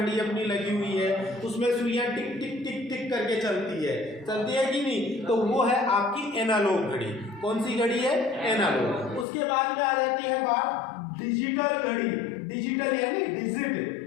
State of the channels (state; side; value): drops out; right; at 9.2 s